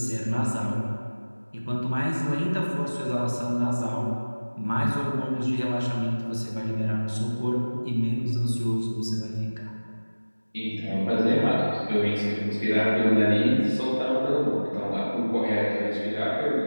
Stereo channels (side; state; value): both; inverted; correlation -1.00